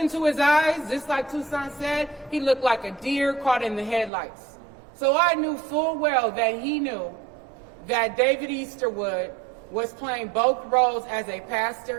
his eyes, just like Tucson said, he looked like a deer caught in the headlights. So I knew full well that he knew that David Easterwood was playing both roles as a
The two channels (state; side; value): drops out; left; at 4.1 s